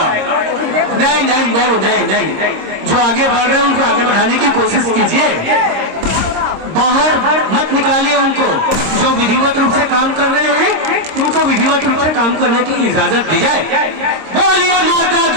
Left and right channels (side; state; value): left; late; 26 ms